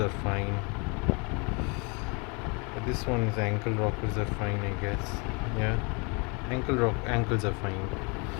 fine. This one's ankle rockers are fine, I guess. Yeah, ankles are fine.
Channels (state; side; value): quieter; right; 31.8 dB